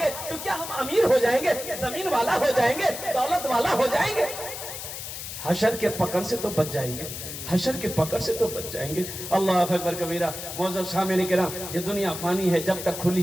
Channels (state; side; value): noise; left; hiss, 8 dB below the sound